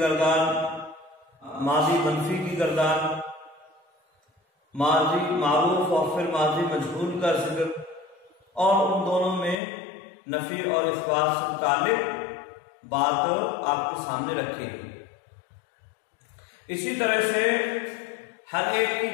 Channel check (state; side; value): drops out; right; at 9.6 s